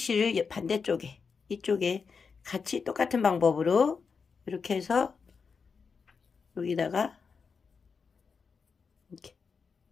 반대쪽에, 이쪽에 같이 똑같은 방법으로 이렇게 해서 여기다가 이렇게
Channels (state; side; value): quieter; right; 5.5 dB